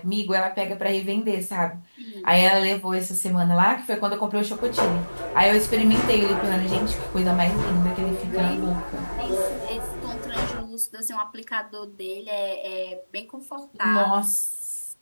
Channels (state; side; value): inverted; both; correlation -1.00